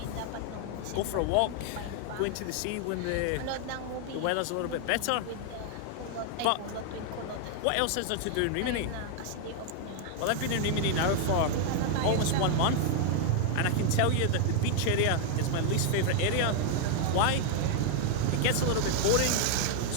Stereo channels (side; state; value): both; different; correlation 0.00